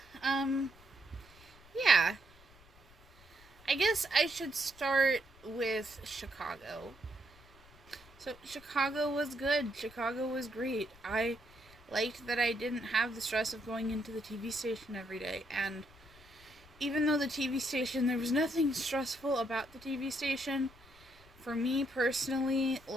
yeah. I guess I should start with Chicago. So, Chicago was good. Chicago was great. I liked that I didn't have the stress of going into the TV station every day. And even though the TV station, there was nothing stressful about the TV station, for me personally,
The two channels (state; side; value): noise; left; rumble, 25 dB below the sound